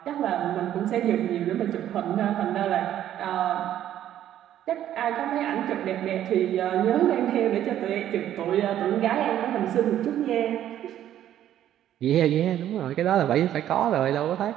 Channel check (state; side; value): quieter; left; 11.5 dB